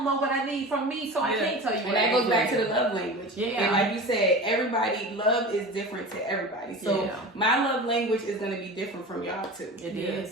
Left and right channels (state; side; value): normal; both; correlation 0.33